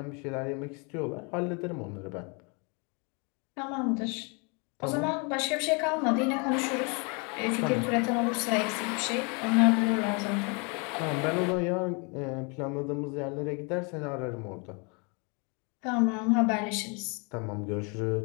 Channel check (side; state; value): right; quieter; 33.0 dB